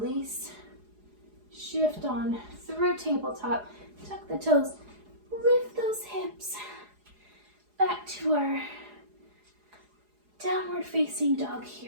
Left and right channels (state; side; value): late; left; 4.8 ms